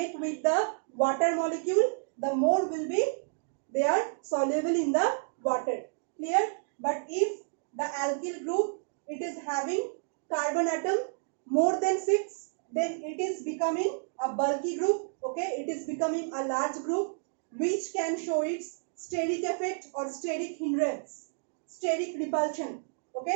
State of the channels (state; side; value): silent; left; digital silence